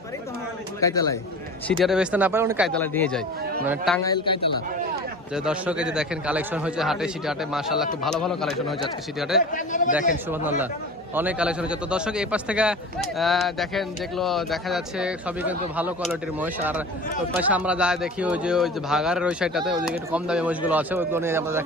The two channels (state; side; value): normal; both; correlation 0.36